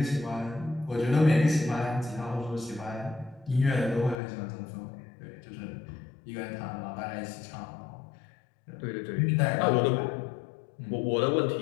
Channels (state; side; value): drops out; right; at 4.2 s